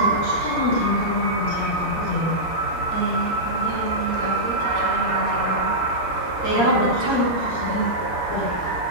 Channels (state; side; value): late; right; 7.8 ms